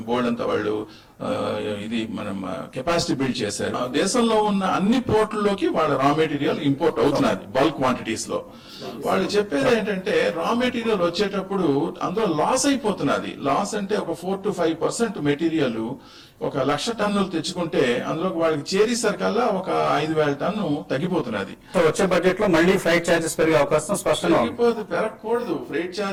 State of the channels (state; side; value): identical; both; correlation 1.00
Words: board అంతా వాళ్ళు ఇది మనం కెపాసిటీ బిల్డ్ చేశారు. దేశంలో ఉన్న అన్ని పోర్టుల్లోకి వాళ్ళ రా మెటీరియల్ ఇంపోర్ట్ అవుతున్నది బల్క్ క్వాంటిటీస్ లో. వాళ్ళు చెప్పేది ఏంటంటే రా మెటీరియల్ వచ్చేటప్పుడు అందులో లాస్ అయిపోతున్నది. లాస్ అంటే ఒక 4 to 5% మెటీరియల్ 1,00,000 టన్నులు తెచ్చుకుంటే అందులో వాళ్ళకి చేరేసరికల్లా ఒక 5,000 టన్ను తగ్గిపోతున్నది. వచ్చే బడ్జెట్ లో మళ్ళీ ఫ్రైట్ చార్జెస్ పెరిగే అవకాశం స్పష్టంగా పెరగకూడదు. ఫ్రైట్